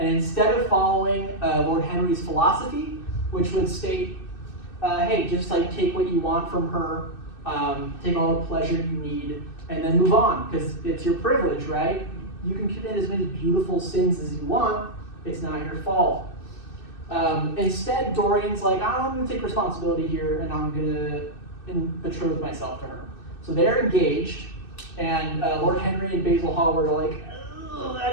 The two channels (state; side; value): late; right; 2.6 ms